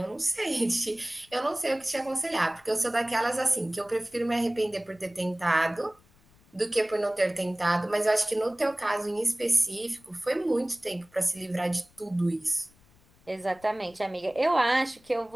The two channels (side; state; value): left; noise; rumble, 30 dB below the sound